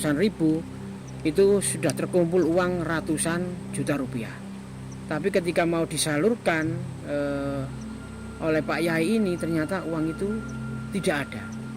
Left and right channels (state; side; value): identical; both; correlation 1.00